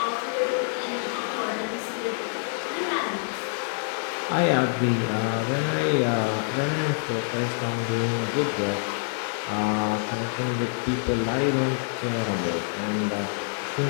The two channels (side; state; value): right; silent; 61 dB below the other